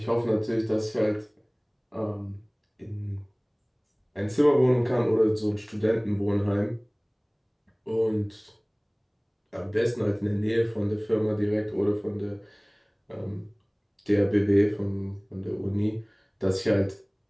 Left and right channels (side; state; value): both; identical; correlation 1.00